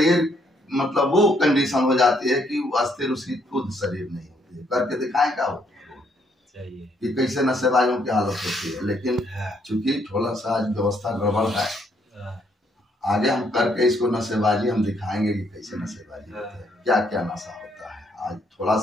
मतलब वो कंडीशन हो जाती है कि अस्थिर उसकी खुद शरीर नहीं होती है। करके दिखाएं क्या वो कि कैसे नशेबाजों की हालत होती है। लेकिन चूंकि थोड़ा सा आज व्यवस्था गड़बड़ है, आगे हम करके इसको नशेबाजी हम दिखाएंगे कि कैसे नशेबाजी होती है, क्या क्या नशा होता है। आज थोड़ा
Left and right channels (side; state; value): both; normal; correlation 0.71